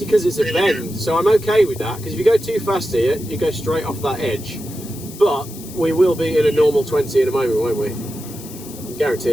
because it's a bend, so I'm okay with that, because if you go too fast here, you go straight off that edge. But we will be in a normal 20 in a moment, won't we? I can guarantee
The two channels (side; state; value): left; noise; hiss, 16 dB below the sound